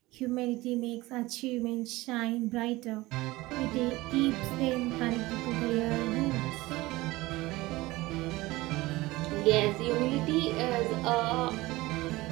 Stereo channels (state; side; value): quieter; left; 19.8 dB